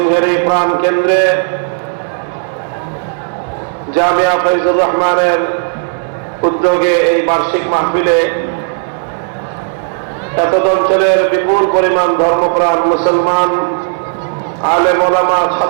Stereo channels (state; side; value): silent; left; digital silence